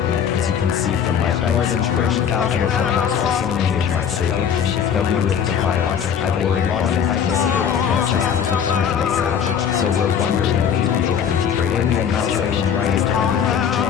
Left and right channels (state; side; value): quieter; right; 8.0 dB